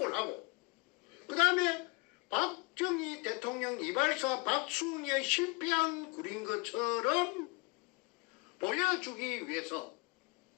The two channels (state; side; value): quieter; right; 28.8 dB